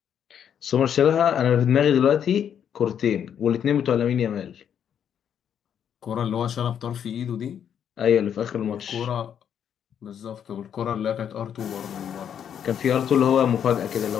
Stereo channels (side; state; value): right; quieter; 8.7 dB